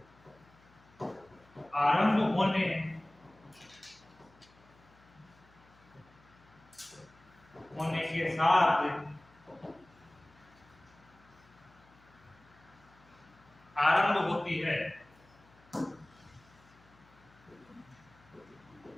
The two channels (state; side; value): noise; left; hum, 27 dB below the sound